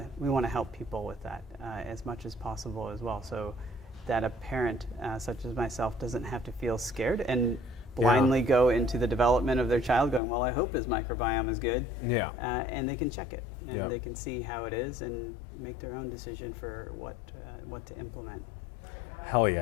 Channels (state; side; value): drops out; right; at 10.2 s